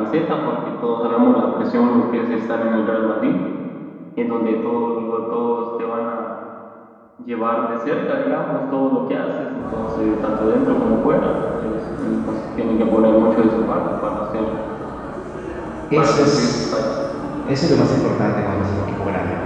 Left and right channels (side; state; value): both; identical; correlation 1.00